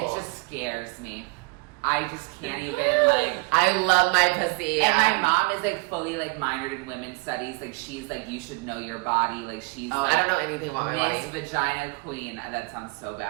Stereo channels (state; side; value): quieter; left; 28.6 dB